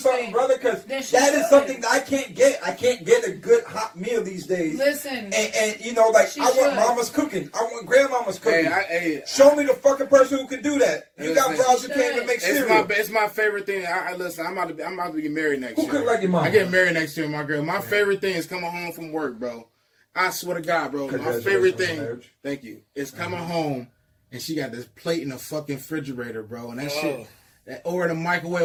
brother, because that is something that I can't get. I can't get a good hot meal these days. Listen, and you know, like I want mama's cooking. I want grandmama's cooking. Show me the fucking person who can do that. You got bras who can't even make cereal. It's my favorite thing. Listen, I'm about to get married next year. Who cook like your mama? I get married next year, my girl. My favorite thing is coming home from work, bro. I swear to God, bro. My favorite thing, thank you, is coming home and she got this plate in the fucking refrigerator, bro, and that shit, or in the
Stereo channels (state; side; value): identical; both; correlation 1.00